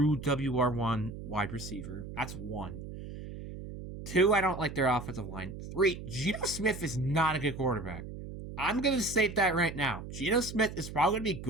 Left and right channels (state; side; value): noise; right; hum, 10 dB below the sound